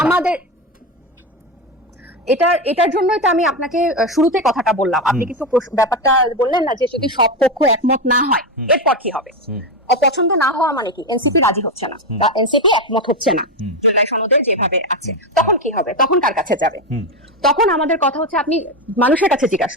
না? এটার জন্যই তো আমি আপনাকে শুরুতে কথাটা বললাম। আপনি কিন্তু ব্যাপারটা বললেন না যে যদি সব পক্ষ একমত না হয় এরপর কি হবে। অপছন্দ না হওয়া মানে কি এনসিপি রাজি হচ্ছে না বা এনসিপি একমত হচ্ছে না জুলাই সনদের যেভাবে আছে, তখন কি হবে? তখন কার কাছে যাবে? তখন আমাদের কথা হচ্ছে আপনি মানুষের কাছে জিজ্ঞাসা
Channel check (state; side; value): normal; both; correlation 0.13